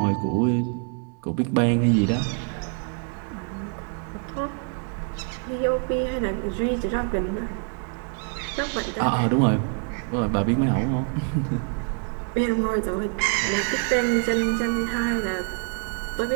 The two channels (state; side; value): quieter; left; 38.6 dB